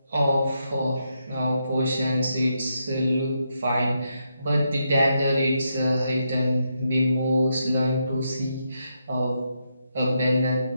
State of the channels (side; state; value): both; inverted; correlation -0.81